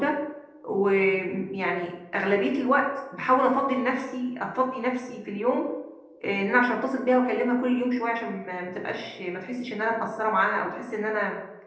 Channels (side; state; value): both; identical; correlation 1.00